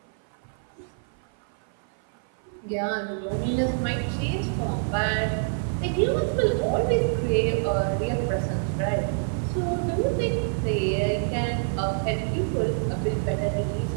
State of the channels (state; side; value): silent; left; 56 dB below the other